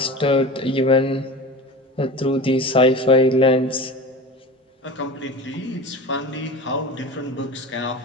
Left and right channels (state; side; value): normal; both; correlation 0.32